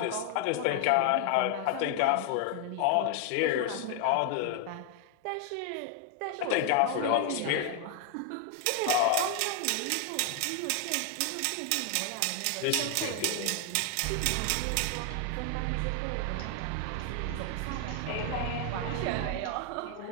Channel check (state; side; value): different; both; correlation 0.00